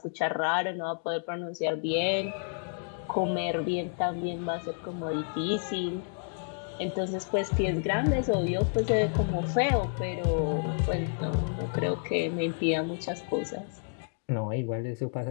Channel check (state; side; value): silent; right; digital silence